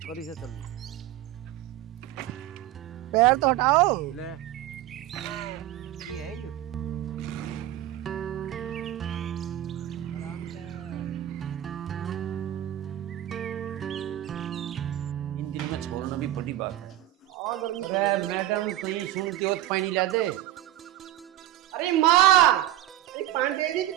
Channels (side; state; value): left; quieter; 13.4 dB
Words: करी से चल पैर तो हटाओ। ले ये है जो आराम से। इन दिन में छोड़ना भी बड़ी बात है। अरे मैडम कहीं सुनती हो तो पानी ला दे। अरे माँ, अरे पानी दे दी